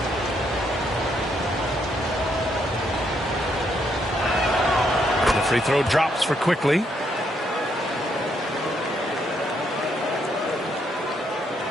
Free throw drops for Quickly.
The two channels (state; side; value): normal; both; correlation 0.74